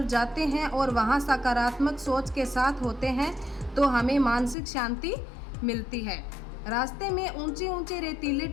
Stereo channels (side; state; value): right; drops out; at 4.5 s